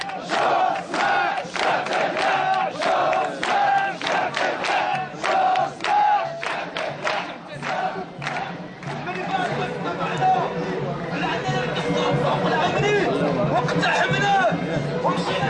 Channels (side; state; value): both; identical; correlation 1.00